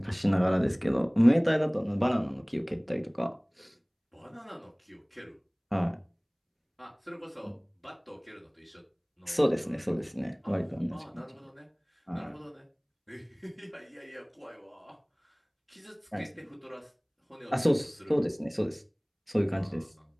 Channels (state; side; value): identical; both; correlation 1.00